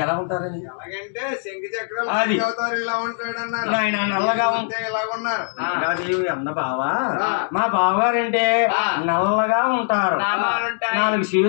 ఎలా ఉంటారని? ఎలాగంటే శంఖ చక్రాలు అవుతారు, ఇలా ఉంటాడు అన్నారు. ఆయన నల్లగా ఉంటే ఇలాగున్నారు. అన్న బావా, మా బావగారంటే నల్లగా ఉంటారు, 4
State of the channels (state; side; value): silent; right; digital silence